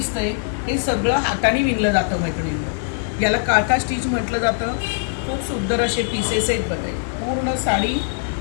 हे सगळं हाताने विणलं जातं मैत्रिणींनो. याला काथा स्टिच म्हटलं जातं. खूप सुंदर असे पीसेस आहेत बघा. पूर्ण साडी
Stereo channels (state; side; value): silent; right; 65 dB below the other